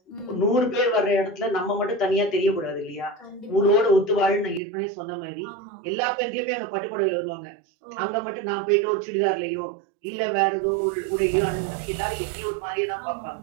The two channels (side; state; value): left; drops out; at 4.6 s